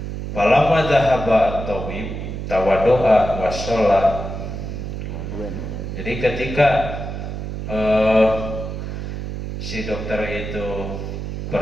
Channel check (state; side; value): noise; right; hum, 6 dB below the sound